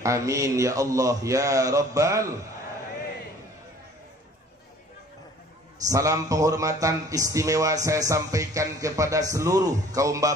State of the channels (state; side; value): normal; both; correlation 0.52